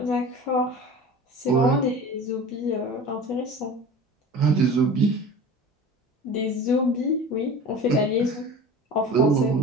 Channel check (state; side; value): normal; both; correlation 0.37